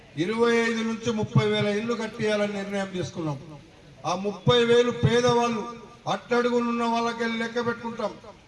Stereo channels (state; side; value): identical; both; correlation 1.00